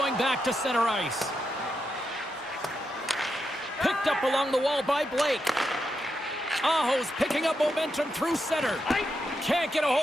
back to center ice. Picked up along the wall by Blake. Aho's picking up momentum through center. Can't get a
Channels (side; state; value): both; normal; correlation 0.85